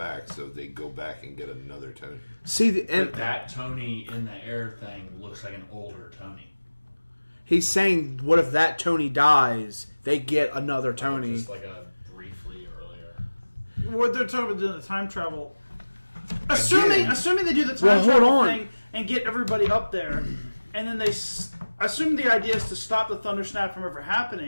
so they go back and get another Tony. See, But that Tony in the air thing looks like an older Tony. he's saying, what if that Tony dies? They get another Tony. Just like a briefly earlier. What they're talking about doing the time travel. Assuming they do the time Well, hold travel on. thing and get everybody up there, and then assume the idea is to stop the thunder snap from ever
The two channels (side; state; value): both; inverted; correlation -1.00